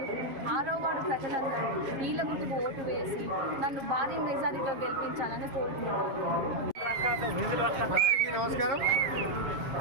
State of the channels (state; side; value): late; left; 7.4 ms